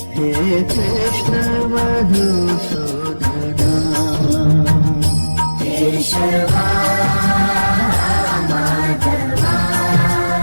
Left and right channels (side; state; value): both; inverted; correlation -1.00